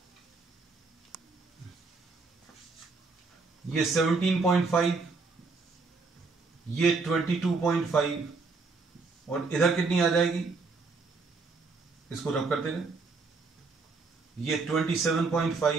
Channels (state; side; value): quieter; left; 4.1 dB